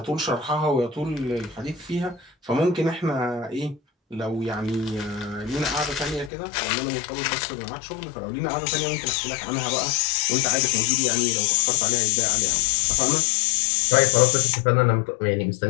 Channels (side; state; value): right; drops out; at 6.3 s